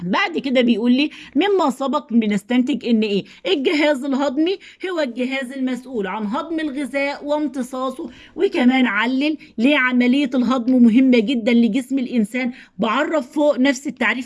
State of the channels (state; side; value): identical; both; correlation 1.00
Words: بعد كده بيقول لي مما سبق بنستنتج ان ايه؟ الجهاز الهضمي هو الجهاز المسؤول عن هضم الغذاء وامتصاصه. وكمان علل ليه عملية الهضم مهمة جدا لجسم الانسان. بعرف فوق نفس